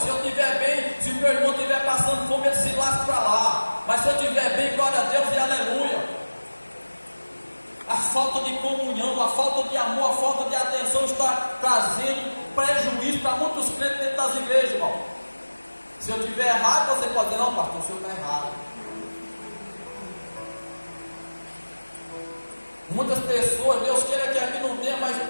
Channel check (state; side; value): inverted; both; correlation -1.00